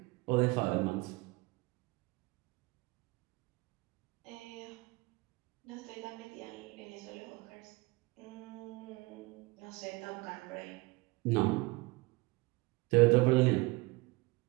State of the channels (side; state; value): left; quieter; 24.0 dB